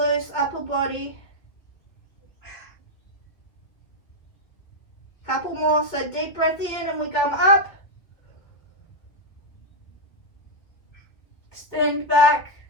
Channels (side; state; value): right; late; 2.4 ms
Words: upper body. Couple more, so deep breath in and we come up. Extend back.